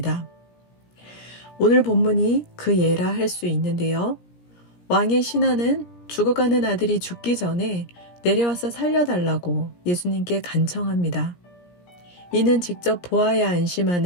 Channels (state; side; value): late; right; 17 ms